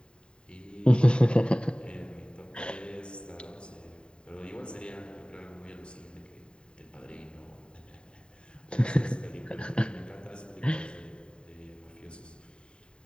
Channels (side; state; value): right; late; 0.051 ms